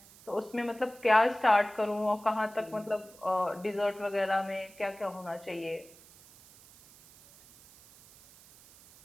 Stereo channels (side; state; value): right; noise; hiss, 23 dB below the sound